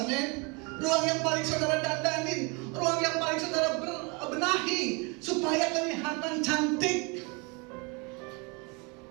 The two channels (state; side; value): quieter; left; 30.3 dB